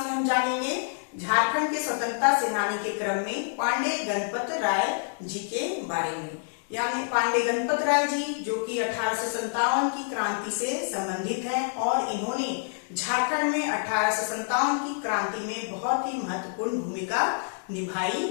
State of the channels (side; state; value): right; silent; digital silence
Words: हम जानेंगे झारखंड के स्वतंत्रता सेनानी के क्रम में पांडे गणपत राय जी के बारे में। यानी पांडे गणपत राय जी जो कि 1857 की क्रांति से संबंधित हैं और इन्होंने झारखंड में 1857 की क्रांति में बहुत ही महत्वपूर्ण भूमिका निभाई